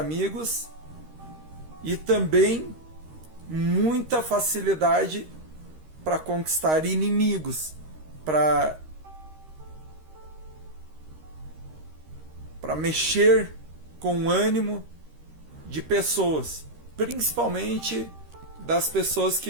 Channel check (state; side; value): late; left; 13 ms